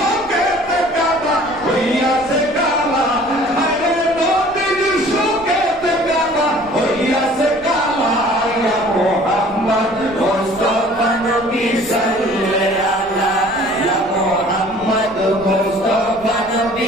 কাবা হইয়াছে কাবা আরে নবীজি শোকেতে কাবা হইয়াছে কাবা ইয়া মুহাম্মদ মুস্তাফা নবী সাল্লাল্লাহু আলা ইয়া মুহাম্মদ মুস্তাফা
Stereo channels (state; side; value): noise; left; rumble, 21 dB below the sound